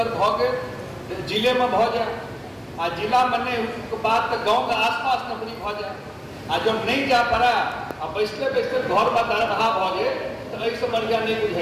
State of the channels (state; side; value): identical; both; correlation 1.00